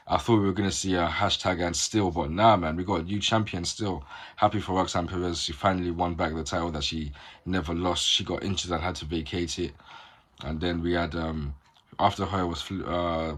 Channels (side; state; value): both; identical; correlation 1.00